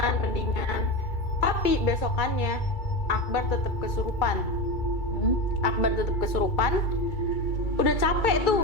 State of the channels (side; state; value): right; late; 2.3 ms